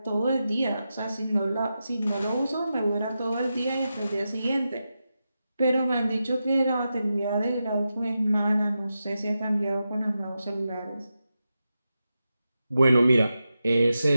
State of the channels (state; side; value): inverted; both; correlation -0.90